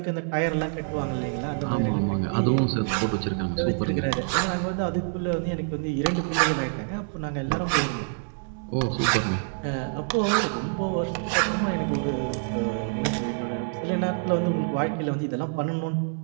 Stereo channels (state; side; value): silent; left; 61 dB below the other